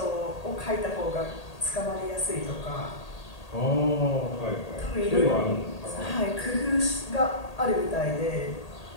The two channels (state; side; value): late; right; 1.8 ms